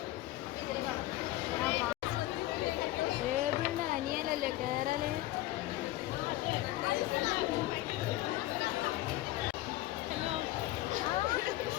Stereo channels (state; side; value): quieter; right; 16.7 dB